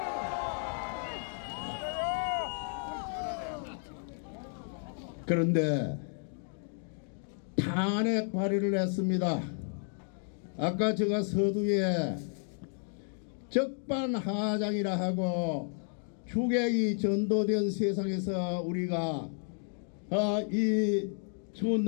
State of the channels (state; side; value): silent; right; 56 dB below the other